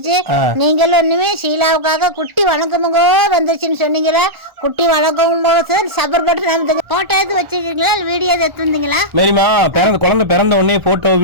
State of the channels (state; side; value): late; left; 1.4 ms